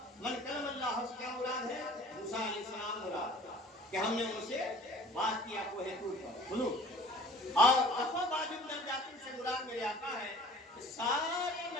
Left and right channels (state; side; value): normal; both; correlation 0.48